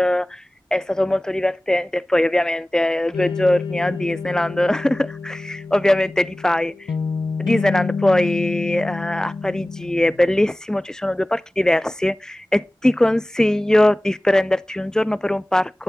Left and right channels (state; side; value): normal; both; correlation 0.97